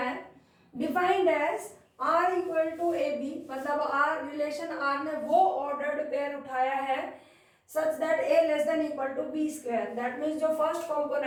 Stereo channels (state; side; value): identical; both; correlation 1.00